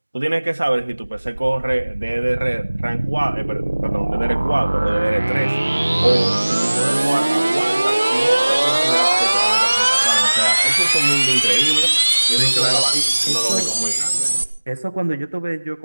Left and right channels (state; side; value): inverted; both; correlation -1.00